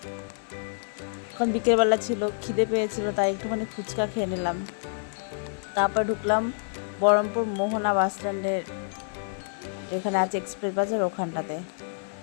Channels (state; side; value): silent; right; 60 dB below the other